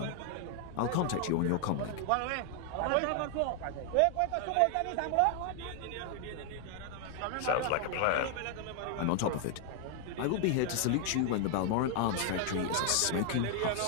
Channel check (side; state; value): both; different; correlation 0.00